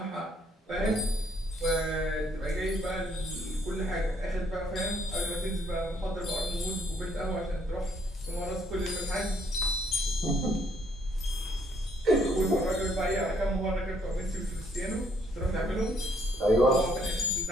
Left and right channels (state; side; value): normal; both; correlation 0.68